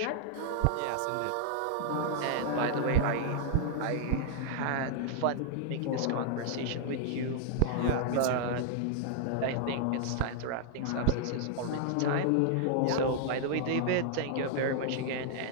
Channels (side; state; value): both; different; correlation -0.01